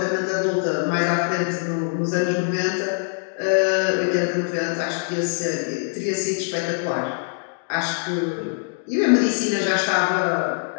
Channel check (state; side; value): silent; right; digital silence